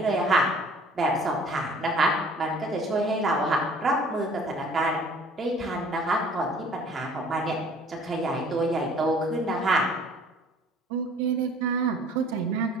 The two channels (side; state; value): both; normal; correlation 0.52